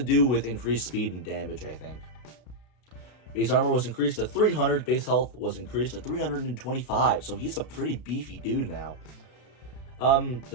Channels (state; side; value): late; right; 33 ms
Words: do with increased speed and damage, I think. Base armor was increased to 300, base health was increased to 325, so he's a pretty beefy dude now.